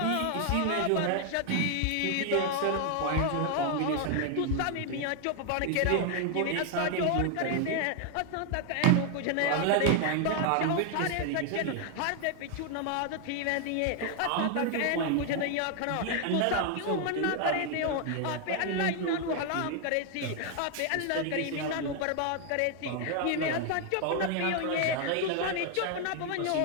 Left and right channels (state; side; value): different; both; correlation 0.00